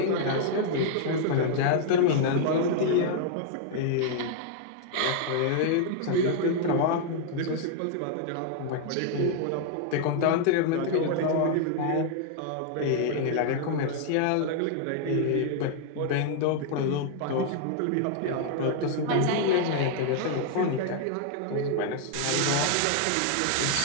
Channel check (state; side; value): different; both; correlation 0.00